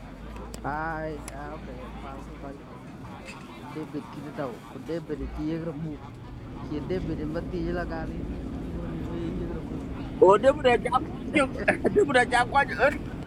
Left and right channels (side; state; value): both; identical; correlation 1.00